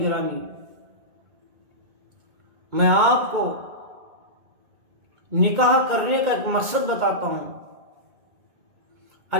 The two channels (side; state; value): left; late; 2.1 ms